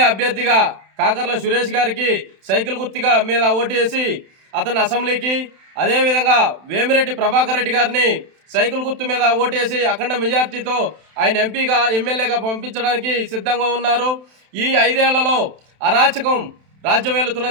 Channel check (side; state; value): left; late; 31 ms